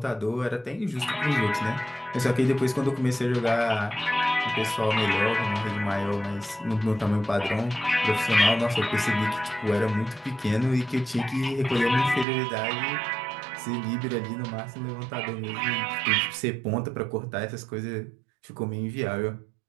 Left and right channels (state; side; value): drops out; left; at 12.2 s